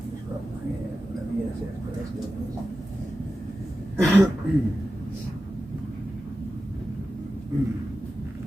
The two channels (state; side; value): normal; both; correlation 0.93